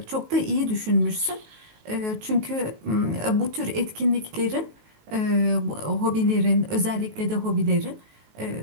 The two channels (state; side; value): late; left; 19 ms